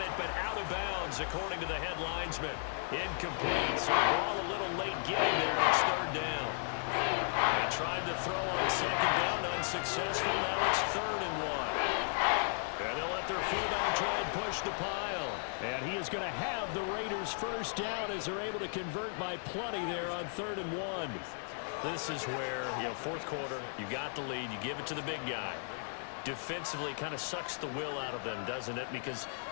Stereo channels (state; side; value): silent; right; digital silence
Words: but out of bounds, according to the head linesman. Incomplete. So the ball a little late getting there, and it's third down. They tried to throw on second down, unsuccessful. Now it's 3rd and 1. And they'll let their fullback try and push the pile. And he is going to have the Raiders first down as they're able to convert by plenty there on 3rd and 1. This is where, fourth quarter, you got the lead, you give it to the big guy. Defensively kind of sucks the will out of them, doesn't it? Because